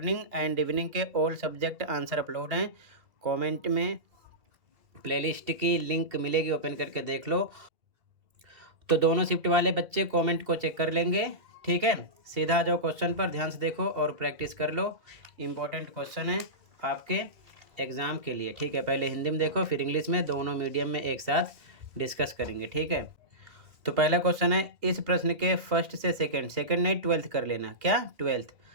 एंड इवनिंग के ऑल सब्जेक्ट आंसर अपलोड हैं। कमेंट में प्लेलिस्ट की लिंक मिलेगी, ओपन करके देख लो। तो दोनों शिफ्ट वाले बच्चे कमेंट को चेक कर लेंगे, ठीक है। सीधा आ जाओ क्वेश्चन पर, ध्यान से देखो और प्रैक्टिस कर लो। इम्पोर्टेंट क्वेश्चन है आपके एग्ज़ाम के लिए, ठीक है। पहले हिंदी में देखो, फिर इंग्लिश में, दोनों मीडियम में एक साथ डिस्कस करेंगे, ठीक है। तो पहला क्वेश्चन है, इस प्रश्न के फर्स्ट से सेकंड नहीं 12th कर लेना, क्या 12th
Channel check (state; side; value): late; left; 2.5 ms